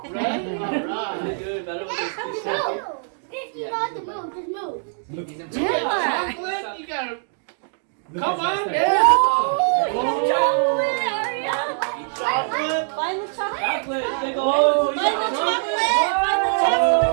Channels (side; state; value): left; silent; digital silence